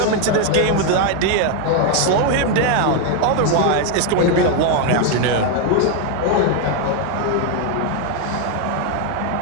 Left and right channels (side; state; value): both; different; correlation 0.01